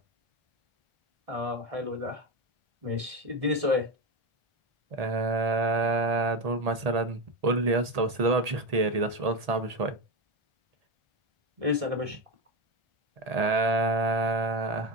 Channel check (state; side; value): late; left; 1.8 ms